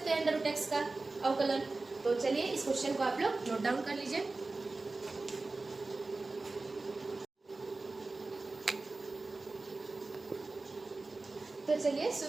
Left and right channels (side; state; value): left; quieter; 3.4 dB